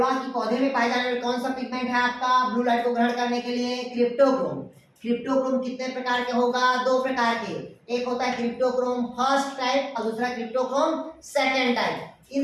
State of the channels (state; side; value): identical; both; correlation 1.00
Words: कि पौधे में पाए जाने वाले कौन सा पिगमेंट है आपका ब्लू लाइट को ग्रहण करने के लिए, क्रिप्टोक्रोम। क्रिप्टोक्रोम कितने प्रकार के होगा, दो प्रकार के, एक होता है क्रिप्टोक्रोम फर्स्ट टाइप और दूसरा क्रिप्टोक्रोम सेकंड टाइप।